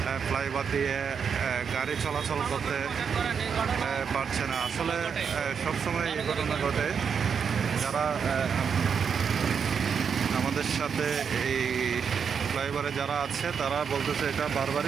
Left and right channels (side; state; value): left; quieter; 6.7 dB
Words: ফ্লাইওভার দিয়ে গাড়ি চলাচল করতে পারছে না। আসলে সবসময় এই ঘটনা ঘটে। যারা আমাদের সাথে এই ফ্লাইওভারে যারা আছে তারা বলতেছে এটা